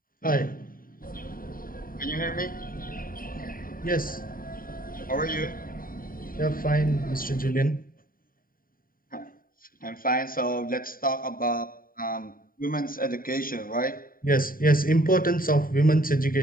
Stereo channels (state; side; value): late; right; 0.41 ms